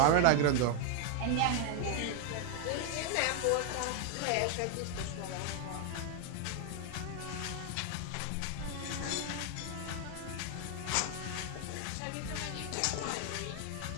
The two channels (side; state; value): both; different; correlation 0.00